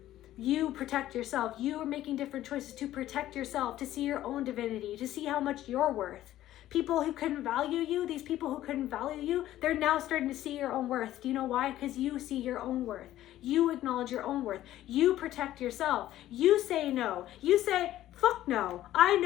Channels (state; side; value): quieter; right; 13.7 dB